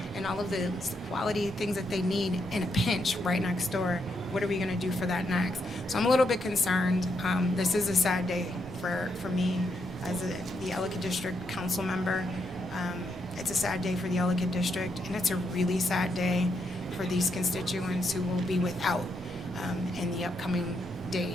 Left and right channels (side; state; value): both; normal; correlation 0.79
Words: and all of the quality things that they need in a pinch right next door. What are we going to do for that next? So I'm a little bit concerned. This is a sad day for me as the Ellicott District Council member. It's a sad day for the Ellicott District, and it's a really sad day for these constituents who will be without in the upcoming